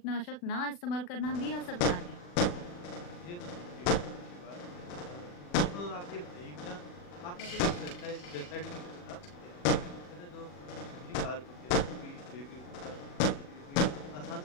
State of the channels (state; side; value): late; right; 40 ms